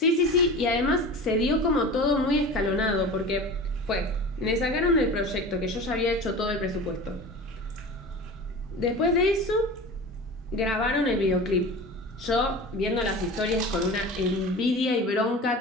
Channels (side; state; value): both; normal; correlation 0.34